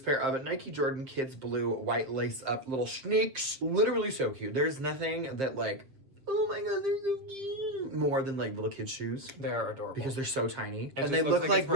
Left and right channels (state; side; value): late; left; 7.6 ms